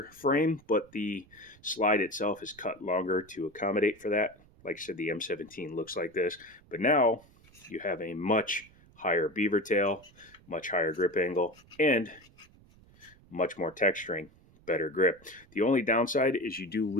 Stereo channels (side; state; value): right; noise; rumble, 27 dB below the sound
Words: frame, but the slide itself is cut longer to accommodate for that. Like I said, the M17 looks like this, but now you have a much higher beaver tail, much higher grip angle, and much more texturing. Better grip. The only downside is you do